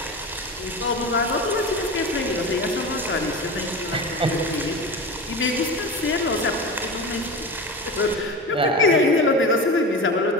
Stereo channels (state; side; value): normal; both; correlation 0.28